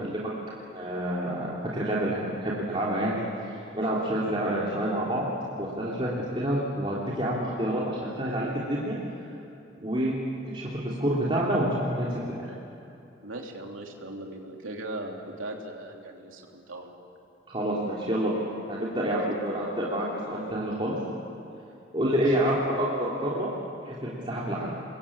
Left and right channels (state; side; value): normal; both; correlation 0.40